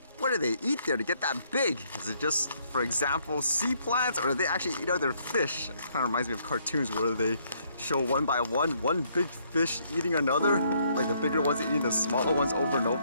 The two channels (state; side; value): inverted; both; correlation -0.68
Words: What do they eat there to get that big? Is it just, for example, sea plants, or do they actually eat other fish? It kind of reminds me of cartoons where they show one by one big fish eating another, like the bigger ones eating the smaller ones over and